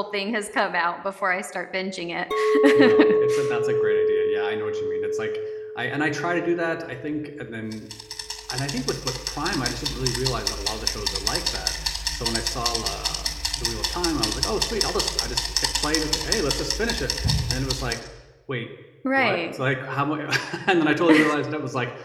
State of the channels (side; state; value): both; identical; correlation 1.00